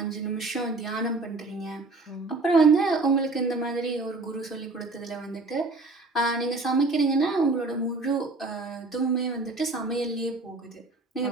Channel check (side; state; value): left; quieter; 3.4 dB